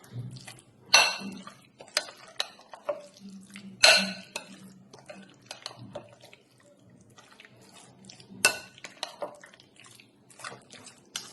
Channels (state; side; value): identical; both; correlation 1.00